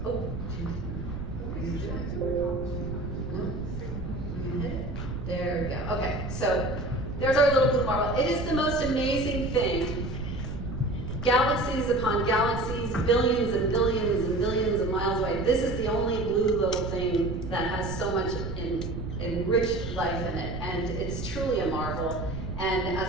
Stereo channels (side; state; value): right; noise; rumble, 7 dB below the sound